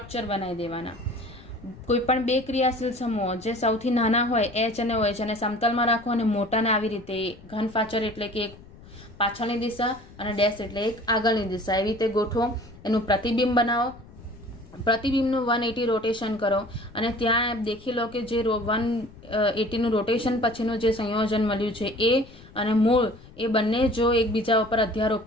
બનાવી દેવાના. કોઈ પણ બે ક્રિયાશીલ સમૂહો જે સૌથી નાના હોય H અને OH અને સમતલમાં રાખો, અને મોટાને આવી રીતે ઘન ફાચર એટલે કે એક પાછળની દિશા અને ડેશ એટલે એક આગળની દિશા, એવી રીતે ગોઠવો. એનું પ્રતિબિંબ બનાવો, પ્રતિબિંબનું 180 રોટેશન કરો અને ત્યાં દેખી લો કે જે 180 નું રોટેશન પછીનું જે સંયોજન મળ્યું છે એ અને મૂળ એ બંને જો એકબીજા ઉપર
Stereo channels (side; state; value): left; noise; rumble, 21 dB below the sound